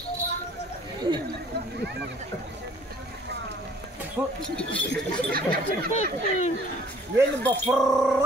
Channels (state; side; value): normal; both; correlation 0.56